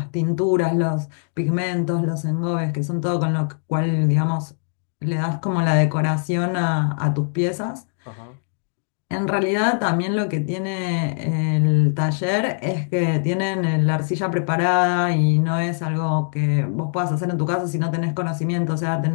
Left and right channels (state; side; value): silent; right; digital silence